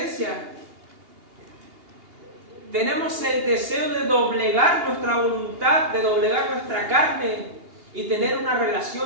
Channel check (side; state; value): left; late; 2.8 ms